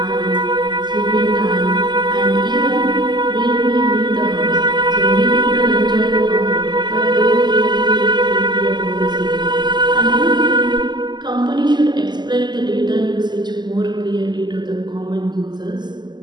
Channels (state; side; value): late; left; 0.21 ms